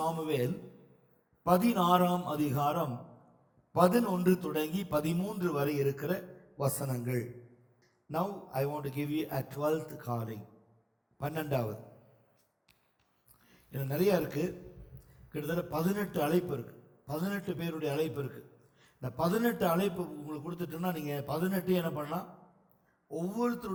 16ஆம் அதிகாரம் 11 தொடங்கி 13 வரை இருக்கிற வசனங்கள். Now I want to give you a 12th calling. 12வது. இது நிறைய இருக்கு, கிட்டத்தட்ட 18 அழைப்பு இருக்கு, 18 பேருடைய அழைப்பு இருக்கு. இந்த 18 அழைப்பு உங்களுக்கு கொடுத்துட்டோம்னா நீங்கள் 18 என்ன பண்ணலாம்,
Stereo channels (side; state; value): both; identical; correlation 1.00